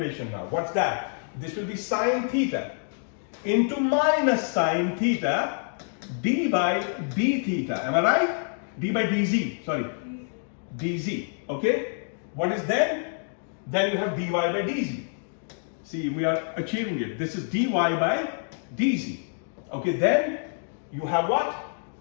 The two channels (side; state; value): right; silent; digital silence